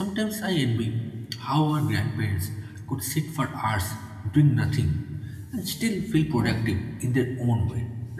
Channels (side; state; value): both; identical; correlation 1.00